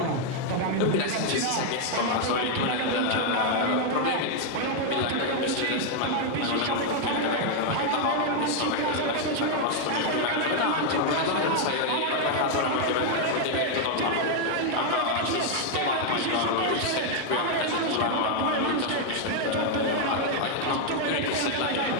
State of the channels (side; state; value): both; different; correlation 0.00